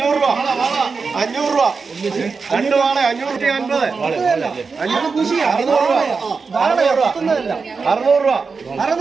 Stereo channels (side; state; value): left; quieter; 4.8 dB